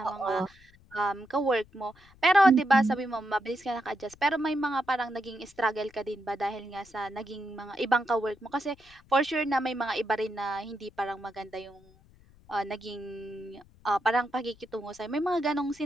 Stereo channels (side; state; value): left; noise; rumble, 27 dB below the sound